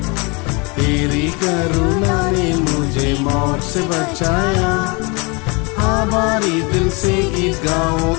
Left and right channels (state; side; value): quieter; right; 29.6 dB